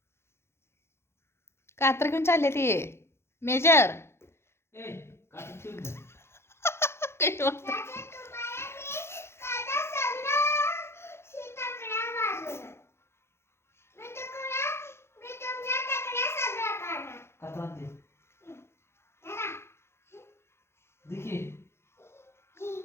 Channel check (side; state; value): right; late; 0.12 ms